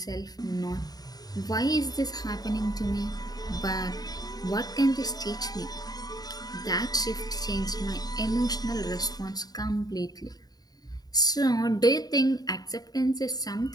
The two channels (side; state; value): right; late; 0.19 ms